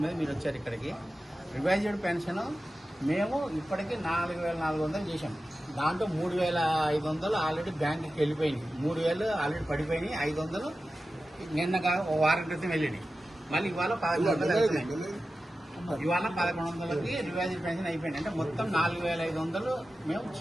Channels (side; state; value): both; normal; correlation 0.93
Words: మీద మీరు వచ్చారు ఇక్కడికి. రివైజ్డ్ పెన్షన్ మేము ఇప్పటికీ 4,400 చేశాం. దాంట్లో 3,500 ఆల్రెడీ బ్యాంకుకి వెళ్ళిపోయినాయి, 3,000 ఆల్రెడీ పడిపోయినాయి, 500 నిన్నగా ఓ వారం క్రితం వెళ్ళినాయి. మళ్ళీ ఇవాళ 1,100 ఇవాళ 1,100కి రివైజ్డ్ పెన్షన్ అయిపోయింది. అంటే మొత్తం 4,500 మేము